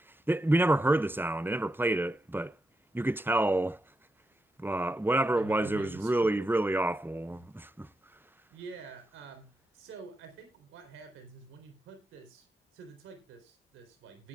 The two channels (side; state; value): both; normal; correlation 0.86